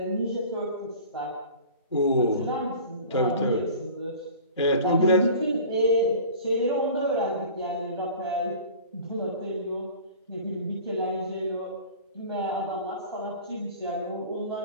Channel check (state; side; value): inverted; both; correlation -0.41